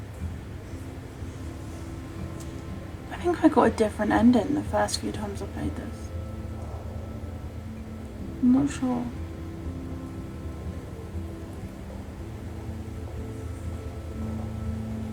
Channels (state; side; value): identical; both; correlation 1.00